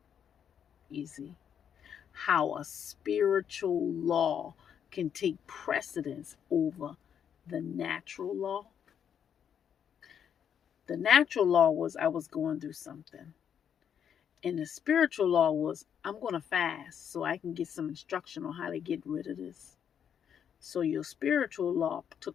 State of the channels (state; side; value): quieter; right; 8.4 dB